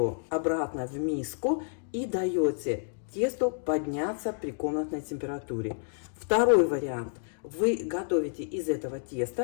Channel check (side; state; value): right; silent; digital silence